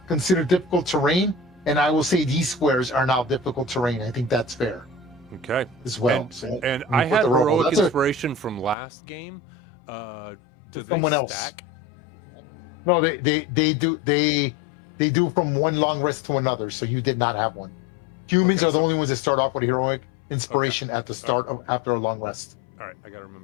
considered difficult terrain, and I will say these squares are now difficult terrain. I think that's fair. Okay. As well. And, So and you I put had the rubble. heroic That's inspiration from last game. Do they Someone else. stack? No, they do from one long rest to another. So you did not have one. Humans Okay, are the only ones that start off with a heroic inspiration at the start of after a long rest. All right, I got to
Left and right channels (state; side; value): drops out; right; at 8.8 s